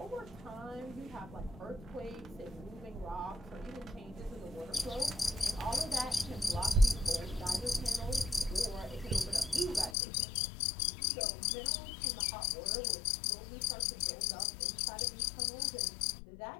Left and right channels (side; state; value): right; drops out; at 10.0 s